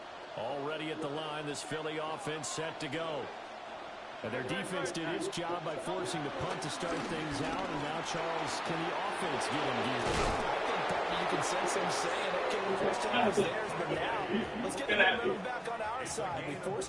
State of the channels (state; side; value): identical; both; correlation 1.00